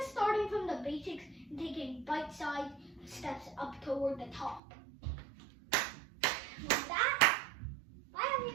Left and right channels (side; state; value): left; drops out; at 4.6 s